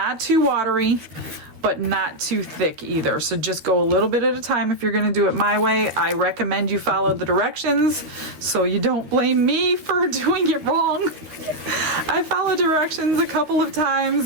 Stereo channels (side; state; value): left; late; 13 ms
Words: too watery, but not too thick either. So just go a little bit at a time if you're gonna do it my way. I recommend you follow the directions so you don't blame me for doing it wrong. I followed directions a couple of